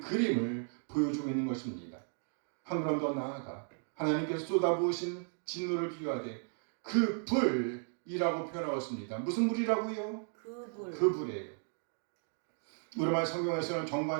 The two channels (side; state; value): left; silent; 54 dB below the other